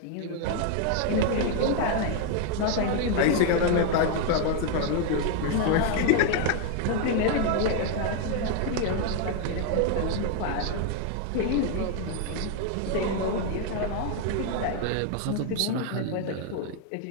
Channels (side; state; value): both; different; correlation 0.00